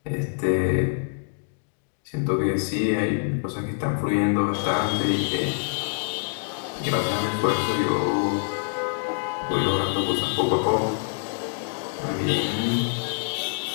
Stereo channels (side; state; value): right; silent; digital silence